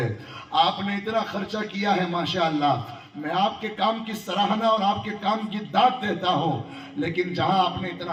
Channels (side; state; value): both; identical; correlation 1.00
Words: آپ نے اتنا خرچہ کیا ہے ماشاءاللہ، میں آپ کے کام کی سراہنا اور آپ کے کام کی داد دیتا ہوں، لیکن جہاں آپ نے